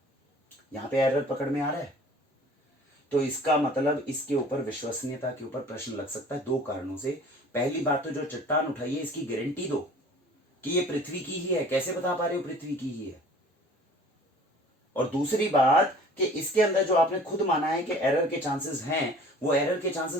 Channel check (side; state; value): both; normal; correlation 0.48